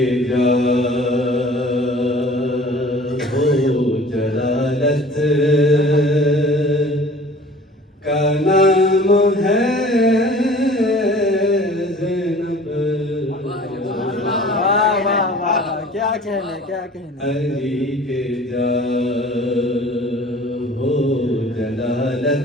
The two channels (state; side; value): normal; both; correlation 0.47